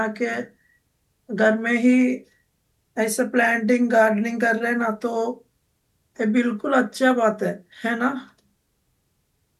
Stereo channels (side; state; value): both; identical; correlation 1.00